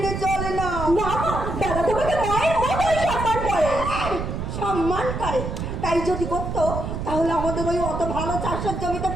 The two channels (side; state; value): right; noise; rumble, 4 dB below the sound